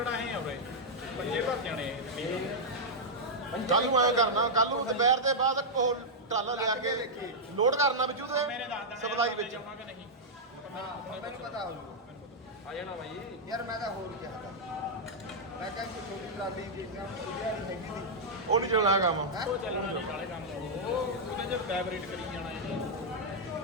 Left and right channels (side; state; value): both; normal; correlation -0.06